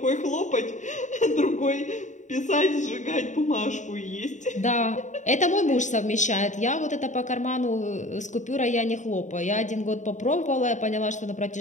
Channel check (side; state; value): right; late; 0.35 ms